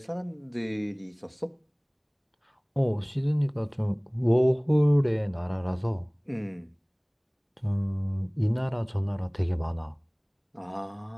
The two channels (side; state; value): both; identical; correlation 1.00